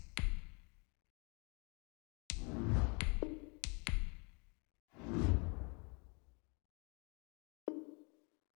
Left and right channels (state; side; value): quieter; right; 32.1 dB